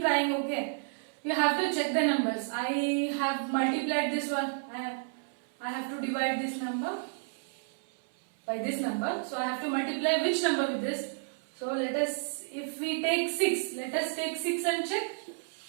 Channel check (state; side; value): silent; left; 57 dB below the other